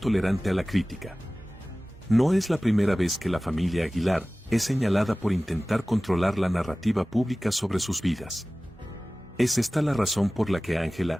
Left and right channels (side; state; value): both; normal; correlation 0.97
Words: a la crítica. No es la primera vez que la familia Aguilar es señalada por intentar controlar la narrativa pública sobre sus vidas. ¿Es esta la razón por la que Ángela